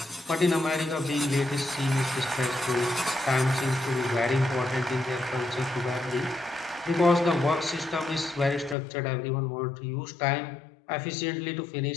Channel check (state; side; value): drops out; right; at 8.8 s